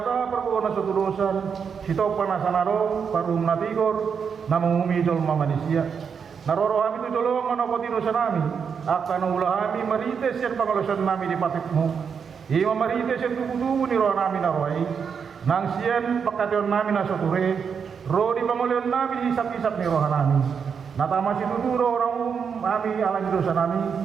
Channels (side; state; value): left; quieter; 6.6 dB